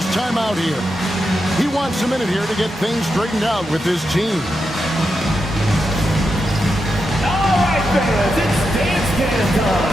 timeout here. He wants a minute here to get things straightened out with his team. All right, fans, it's dance can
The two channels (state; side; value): normal; both; correlation 0.86